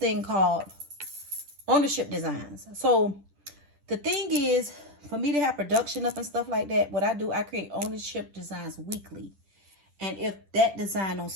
called ownership designs. So the thing is, for me to have production up and stuff like that, what I do, I create ownership designs weekly. And if that design don't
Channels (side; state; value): left; late; 10 ms